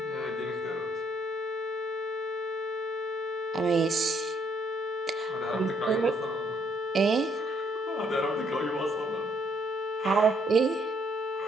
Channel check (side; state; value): both; normal; correlation 0.69